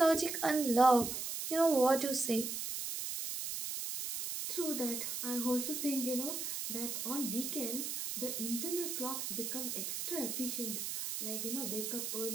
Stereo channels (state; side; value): noise; right; hiss, 4 dB below the sound